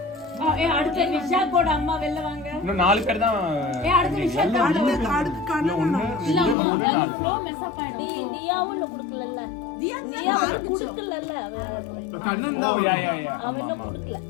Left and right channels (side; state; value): right; drops out; at 6.6 s